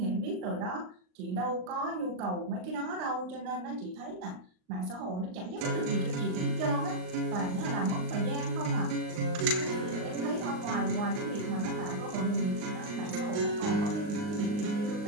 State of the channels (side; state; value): left; late; 39 ms